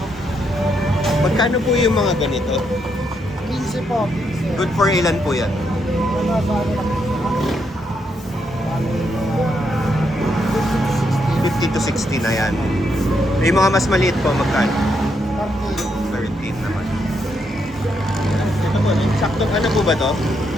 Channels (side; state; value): both; normal; correlation 0.78